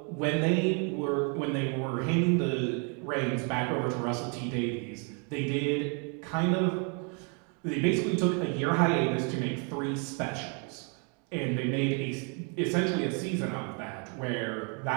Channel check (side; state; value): left; quieter; 37.2 dB